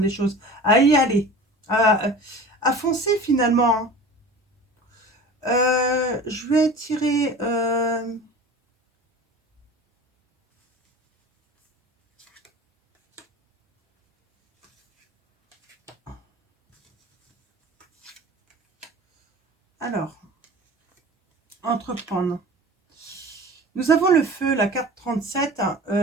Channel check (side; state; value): both; normal; correlation 0.38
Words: les choses, à y aller, à foncer finalement. Hein. Je vais tirer... Alors, entreprendre. Nous avons le feu, la carte 37.